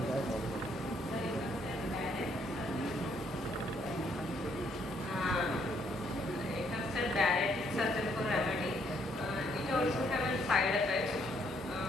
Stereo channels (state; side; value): normal; both; correlation 0.70